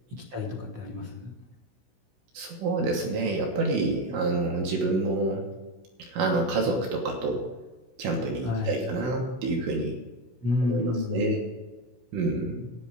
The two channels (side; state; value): left; late; 16 ms